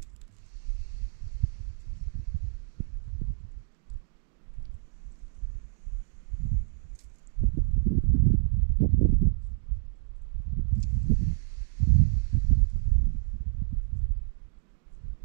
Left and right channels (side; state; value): left; silent; digital silence